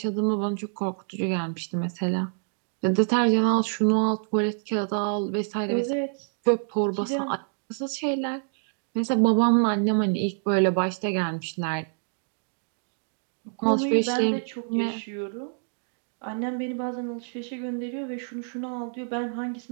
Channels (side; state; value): left; silent; digital silence